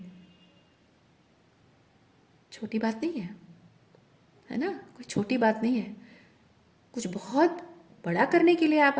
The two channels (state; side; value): identical; both; correlation 1.00